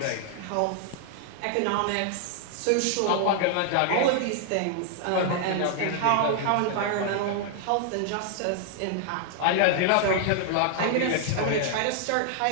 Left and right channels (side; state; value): both; different; correlation 0.00